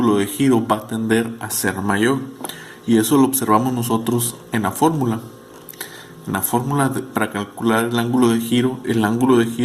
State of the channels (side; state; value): both; identical; correlation 1.00